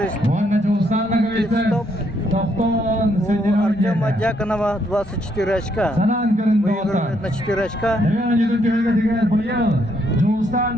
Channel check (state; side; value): normal; both; correlation 0.73